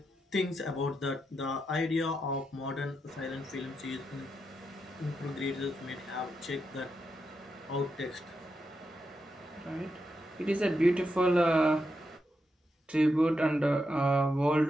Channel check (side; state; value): both; normal; correlation 0.85